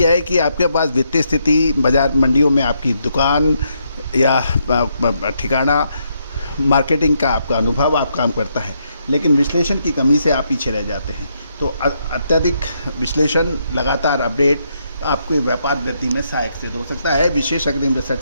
है कि आपके पास वित्तीय स्थिति, बाजार मंडियों में आपकी दुकान या ठिकाना, मार्केटिंग का आपका अनुभव आप काम करता है, लेकिन विश्लेषण की कमी से आप पीछे रह जाते हैं। तो अत्यधिक विश्लेषण, लगातार अपडेट आपके व्यापार वृद्धि में सहायक सिद्ध हो सकता है। विशेष अग्रिम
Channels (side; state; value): both; inverted; correlation -0.77